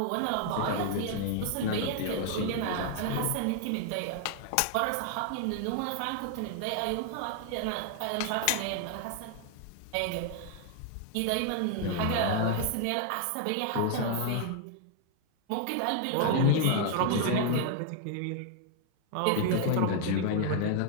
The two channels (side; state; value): both; different; correlation 0.00